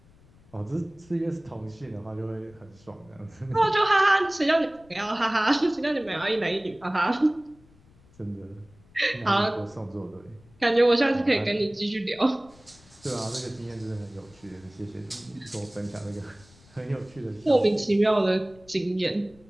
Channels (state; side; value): noise; left; rumble, 27 dB below the sound